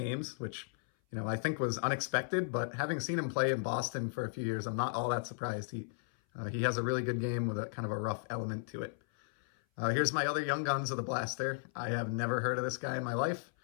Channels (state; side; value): silent; right; 54 dB below the other